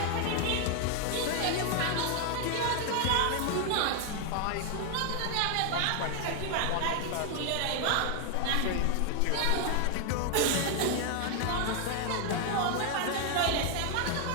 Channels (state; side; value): different; both; correlation 0.00